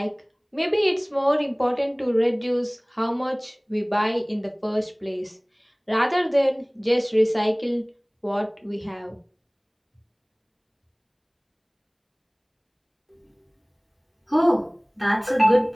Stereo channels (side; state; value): both; identical; correlation 1.00